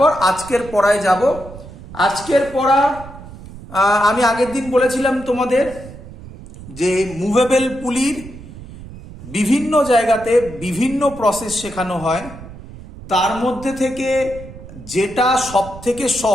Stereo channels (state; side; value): noise; right; rumble, 15 dB below the sound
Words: আজকের পড়ায় যাব। আজকের পড়া আমি আগের দিন বলেছিলাম তোমাদের যে মুভেবল পুলির বিভিন্ন জায়গাতে বিভিন্ন প্রসেস শেখানো হয়, তার মধ্যে থেকে যেটা সব থেকে